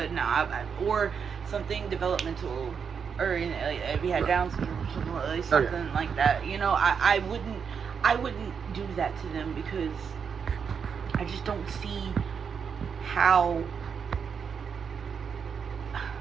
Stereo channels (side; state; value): left; quieter; 6.6 dB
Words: no, or something developmental, or if you had Down syndrome, something like that. You know, I wouldn't do that to them, because I just don't see how.